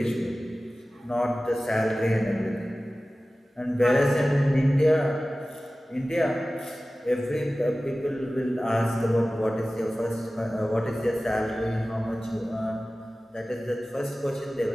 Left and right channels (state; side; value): normal; both; correlation 0.96